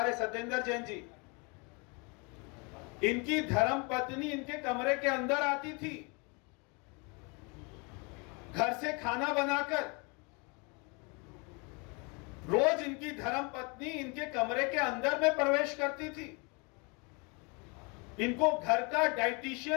सत्येंद्र जैन जी, इनकी धर्म पत्नी इनके कमरे के अंदर आती थी, घर से खाना बनाकर। रोज इनकी धर्म पत्नी इनके कमरे के अंदर में प्रवेश करती थी। इनको घर का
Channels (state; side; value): quieter; right; 31.2 dB